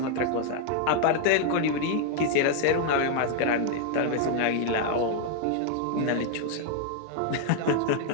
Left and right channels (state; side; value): different; both; correlation 0.00